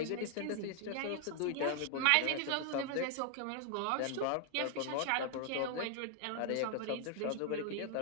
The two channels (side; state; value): both; different; correlation 0.00